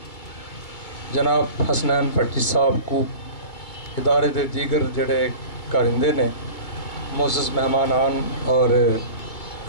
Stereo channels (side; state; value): right; late; 2.2 ms